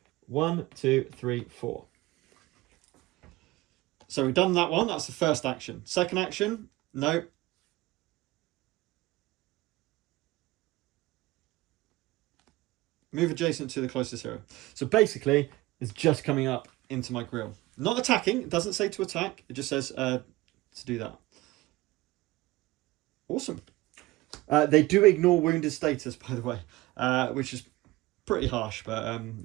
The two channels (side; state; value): left; quieter; 19.2 dB